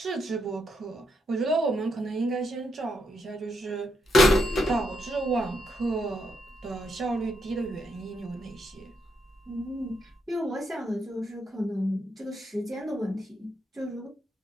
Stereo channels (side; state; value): both; normal; correlation 0.80